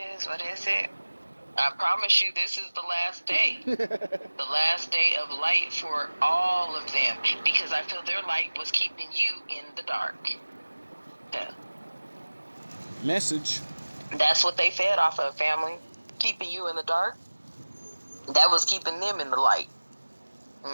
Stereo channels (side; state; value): both; inverted; correlation -1.00